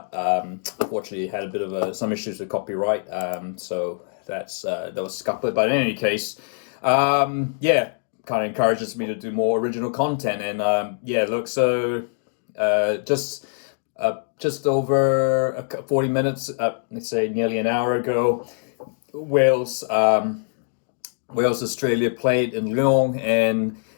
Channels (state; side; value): silent; right; digital silence